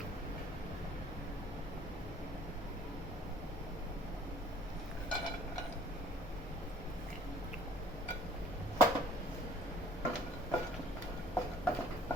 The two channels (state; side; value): normal; both; correlation 0.56